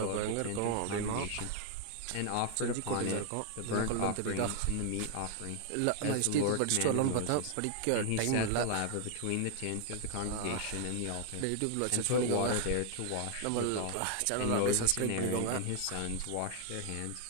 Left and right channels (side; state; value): both; different; correlation 0.00